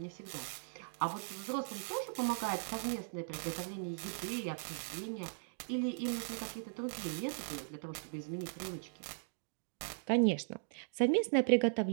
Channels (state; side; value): silent; left; digital silence